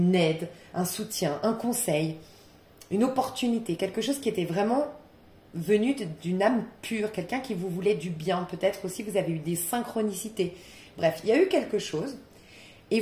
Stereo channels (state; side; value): identical; both; correlation 1.00